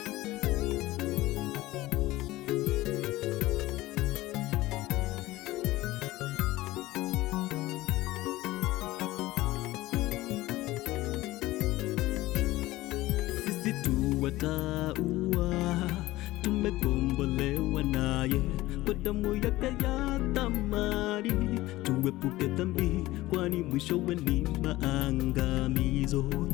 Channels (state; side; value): quieter; right; 17.8 dB